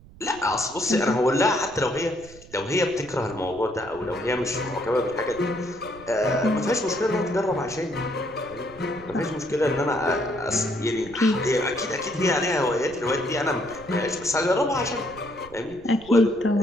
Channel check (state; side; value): noise; right; rumble, 21 dB below the sound